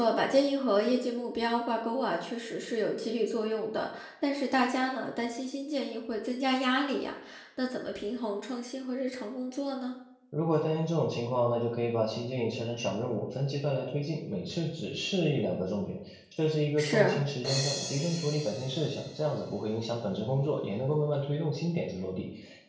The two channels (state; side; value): identical; both; correlation 1.00